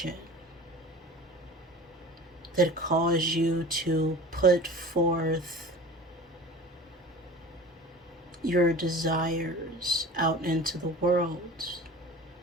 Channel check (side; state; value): both; normal; correlation 0.37